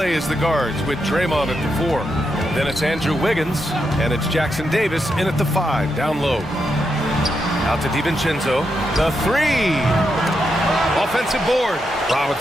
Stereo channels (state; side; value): normal; both; correlation 0.83